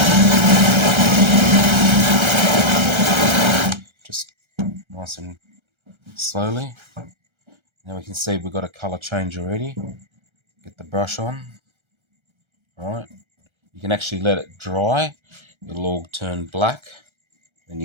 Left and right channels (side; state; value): left; late; 1.3 ms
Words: just nice and slowly. Now we can see we've got a colour change already. Get the brush on. Alright, you can actually let it dry. It'll all turn black. Then